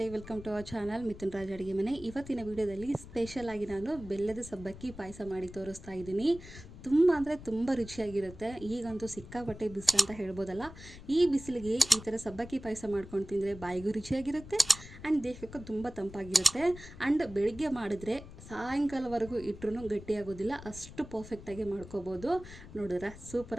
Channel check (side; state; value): left; noise; rumble, 15 dB below the sound